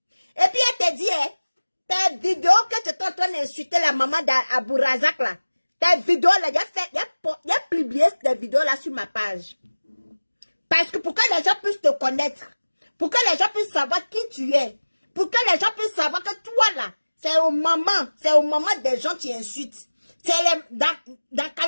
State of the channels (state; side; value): inverted; both; correlation -1.00